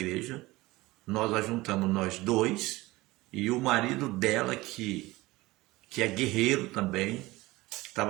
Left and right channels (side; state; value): left; quieter; 19.8 dB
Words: nós ajuntamos nós dois, e o marido dela, que é guerreiro também,